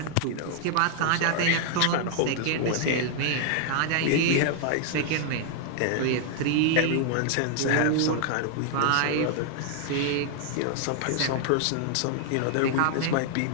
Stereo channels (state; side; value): different; both; correlation 0.00